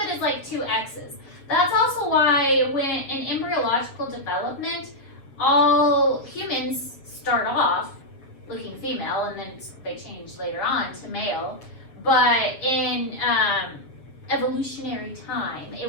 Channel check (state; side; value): late; right; 7.3 ms